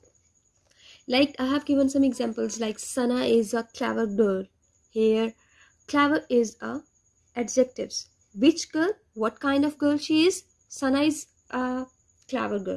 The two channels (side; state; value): both; identical; correlation 1.00